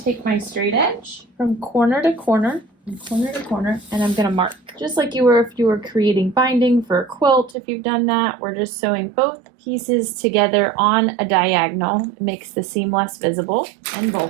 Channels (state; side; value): drops out; left; at 7.6 s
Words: take my straight edge from corner to corner, and I'm going to mark. Just like you were if you were creating binding for a quilt, if you've done that, we're just sewing both pieces together on a diagonal. It makes the seam less visible and